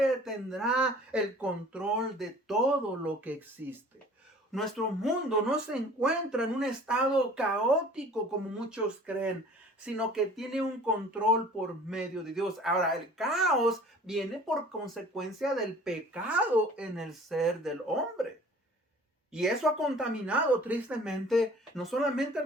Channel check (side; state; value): both; normal; correlation 0.48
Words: tendrá el control de todo lo que existe. Nuestro mundo no se encuentra en un estado caótico como muchos creen, sino que tiene un control por medio de Dios. Ahora, el caos viene por consecuencia del pecado en el ser del hombre. Y eso ha contaminado tristemente no solamente